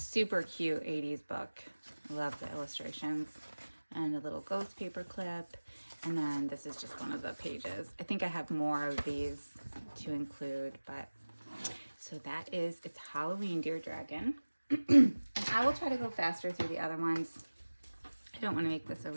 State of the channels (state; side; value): inverted; both; correlation -1.00